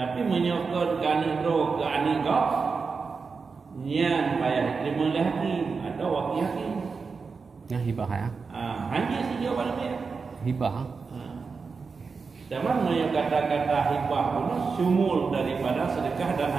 menyok ke anak drawa ke anak kau yang payah terima oleh hakim atau wakil hakim. Yang hibah ya? Hanya si jawapan dia. Hibah. Zaman yang kata-kata hibah itu sumul daripada sedekah dan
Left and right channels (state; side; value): quieter; left; 4.9 dB